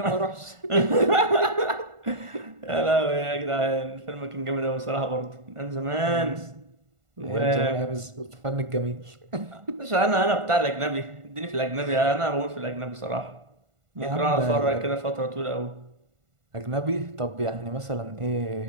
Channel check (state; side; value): late; left; 1.5 ms